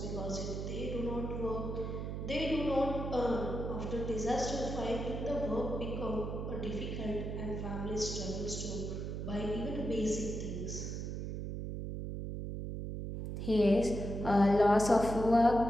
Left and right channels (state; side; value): noise; right; hum, 4 dB below the sound